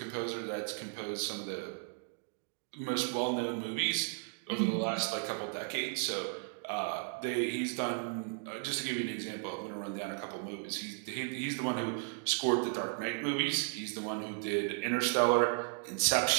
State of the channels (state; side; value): silent; left; 54 dB below the other